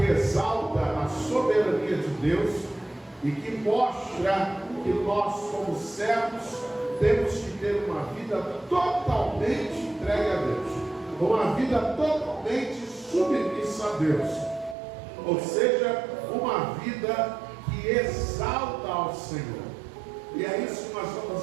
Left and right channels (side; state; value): left; drops out; at 14.8 s